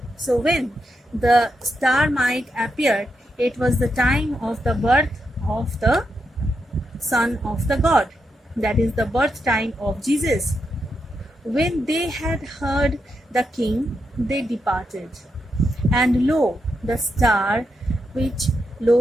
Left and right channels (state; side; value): normal; both; correlation 0.84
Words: So when the star might appear, it was the time of the birth of the Son of the God, that is the birth time of Jesus. When they had heard the king, they departed. And lo, the star